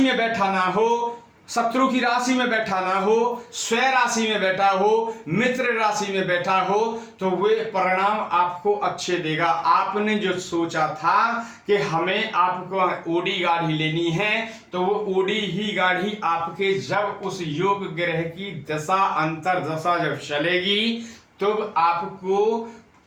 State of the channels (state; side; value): identical; both; correlation 1.00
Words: बैठा ना हो, शत्रु की राशि में बैठा ना हो, स्वय राशि में बैठा हो, मित्र राशि में बैठा हो, तो वे परिणाम आपको अच्छे देगा। आपने जो सोचा था कि हमें आपको ओडी गाढ़ी लेनी है, तो वो ओडी ही गाढ़ी आपके जब उस योग ग्रह की दशा अंतर दशा जब चलेगी तब आपको